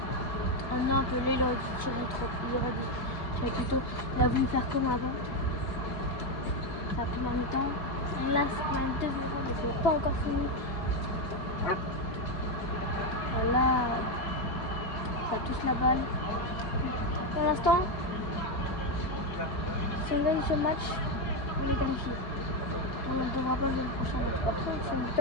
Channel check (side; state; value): right; late; 3.7 ms